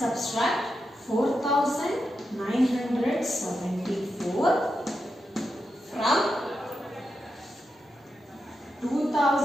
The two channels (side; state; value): both; normal; correlation 0.87